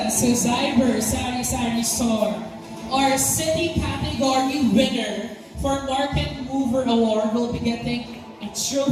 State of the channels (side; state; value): both; identical; correlation 1.00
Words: to Zyber Sari Sari Store, our city category winner for Market Mover Award. Will be getting a